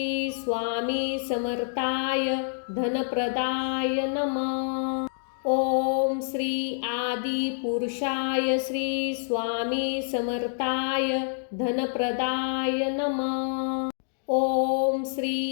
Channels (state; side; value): silent; right; digital silence